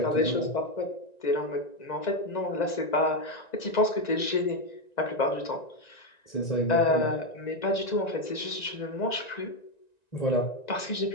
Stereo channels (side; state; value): right; late; 1.9 ms